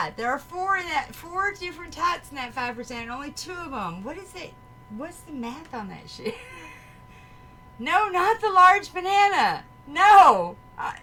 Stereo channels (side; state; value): both; identical; correlation 1.00